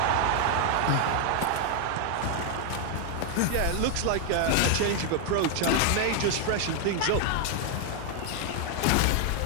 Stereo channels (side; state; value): both; different; correlation 0.00